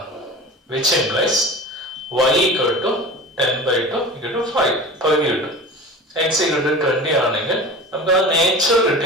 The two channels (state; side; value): normal; both; correlation 0.35